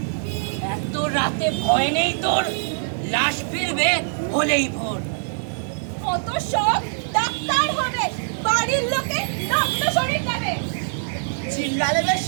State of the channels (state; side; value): silent; left; digital silence